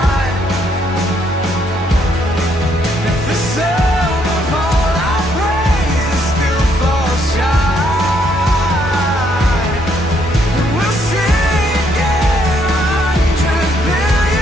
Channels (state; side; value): normal; both; correlation 0.71